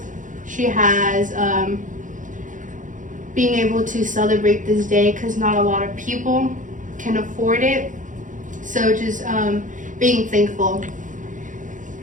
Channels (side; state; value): left; late; 0.37 ms